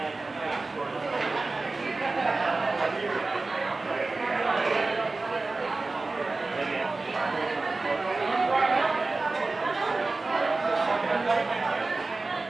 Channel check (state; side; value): quieter; left; 3.5 dB